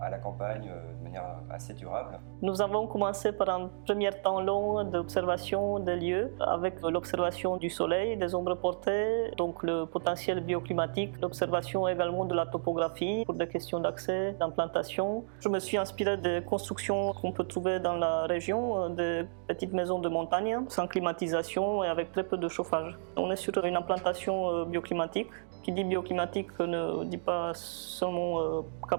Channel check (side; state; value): left; silent; digital silence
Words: la campagne de manière assez durable. Nous avons commencé par un premier temps long d'observation des lieux, avec l'observation du soleil, des ombres portées, donc le potentiel bioclimatique, l'observation également de la topographie pour des questions d'accès, d'implantation. Je me suis inspiré des constructions qu'on peut trouver dans la région, des petites maisons de montagne, sans climatisation et avec très peu de chauffage. On est sur une implantation bioclimatique. Qui dit bioclimatique ne dit pas seulement